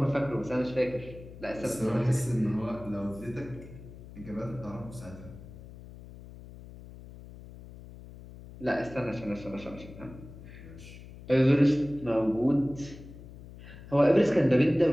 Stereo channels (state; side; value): noise; left; hum, 16 dB below the sound